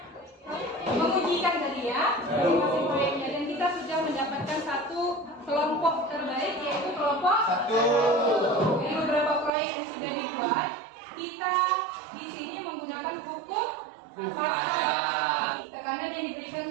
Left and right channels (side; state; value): left; drops out; at 9.5 s